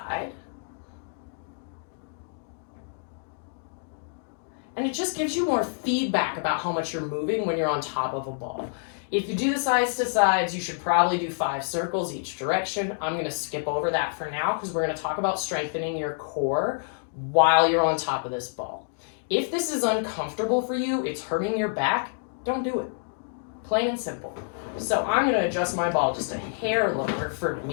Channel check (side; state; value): right; silent; digital silence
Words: And it just gives you more feedback about how much you're moving when you're on top of a ball. If you do the sides to sides, you should probably do 5 circles each direction. I'm gonna skip over that for now, because we're gonna talk about strengthening your core while you're on top of this ball. If this is uncomfortable for you, it's hurting your back, don't do it. Plain and simple. So I'm gonna adjust my ball just a hair lower for